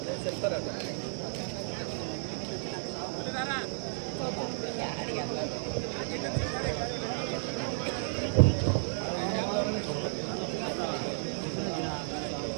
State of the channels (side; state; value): left; silent; 56 dB below the other